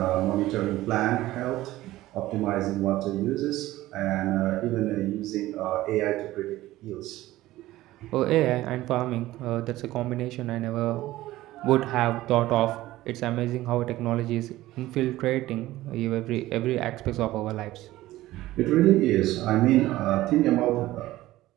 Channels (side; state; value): left; quieter; 16.4 dB